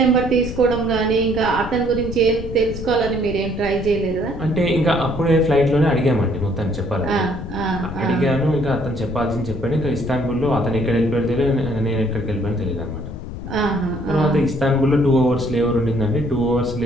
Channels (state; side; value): noise; left; rumble, 9 dB below the sound